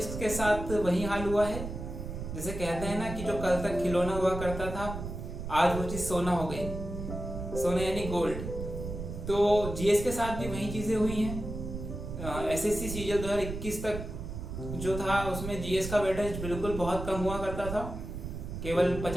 के साथ वही हाल हुआ है, जैसे कहते हैं ना कि जो कल तक खिलौना हुआ करता था आज वो चीज़ सोना हो गई, सोना यानी गोल्ड। तो जीएस के साथ भी वही चीज़ें हुई हैं। एसएससी सीजीएल 2021 तक जो था उसमें जीएस का वेटेज बिल्कुल बहुत कम हुआ करता था। केवल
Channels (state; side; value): noise; right; rumble, 7 dB below the sound